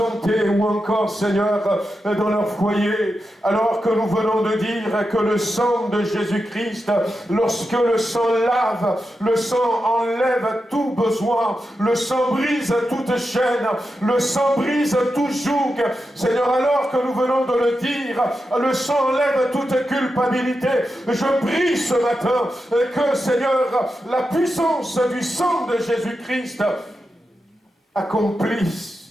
ou encore, Seigneur, dans leur foyer, alors que nous venons de dire que le sang de Jésus-Christ, lorsque le sang lave, le sang enlève tout besoin, le sang brise toute chaîne, le sang brise tout joug. Seigneur, alors que nous venons de le dire, le sang enlève toute culpabilité. Je prie, prie ce matin que, Seigneur, la puissance du sang de Jésus-Christ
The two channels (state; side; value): normal; both; correlation 0.89